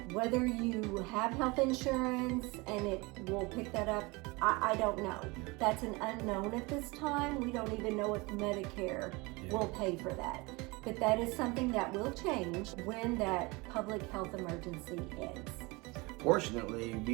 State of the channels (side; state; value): left; quieter; 25.2 dB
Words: whether you have health insurance and it will pick that up, I don't know. That's an unknown at this time. We don't even know if Medicare will pay for that. But that is something that will change when that public health emergency ends. Fortunately,